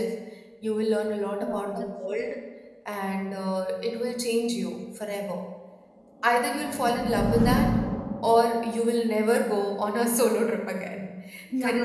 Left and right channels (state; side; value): identical; both; correlation 1.00